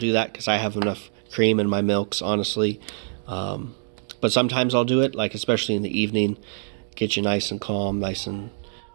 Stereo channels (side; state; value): left; silent; digital silence